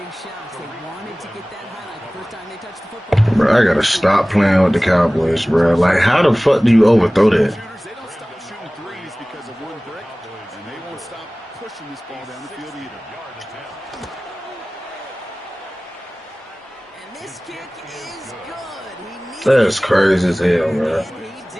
shot. They wanted to get that highlight the first time they touched the football. Bro, I gotta stop playing with the Cowboys, bro. Like, how the fuck do you overthrow that? They don't stop shooting threes because of one brick, and they won't stop pushing this ball down the field either. And this kick is good. He needed That's crazy as hell, bro. and he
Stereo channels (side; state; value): both; normal; correlation 0.98